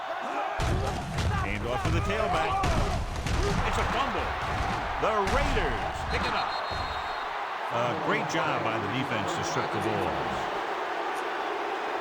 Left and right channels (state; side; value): identical; both; correlation 1.00